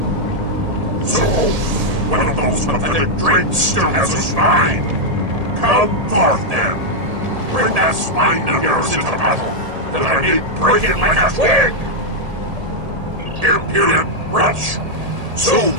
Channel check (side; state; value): left; late; 1.8 ms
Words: So, one of those pathetic drakes still has a spine. Come forth, then. Bring that spine of yours into battle, that I may break it like a twig! Impudent wretch! Soon